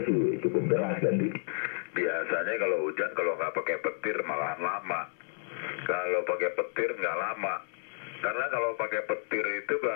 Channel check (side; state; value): right; silent; 57 dB below the other